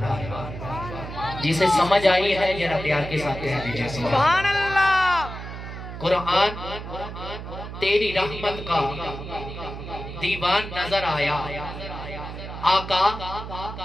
آیا. جسے سمجھ آئی ہے ذرا پیار کے ساتھ کہہ دیجیے سبحان اللہ. قرآن تیری رحمت کا دیوان نظر آیا. آقا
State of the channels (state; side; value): noise; right; hum, 9 dB below the sound